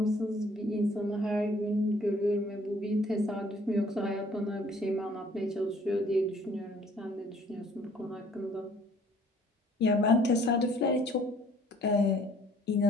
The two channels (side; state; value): both; normal; correlation 0.58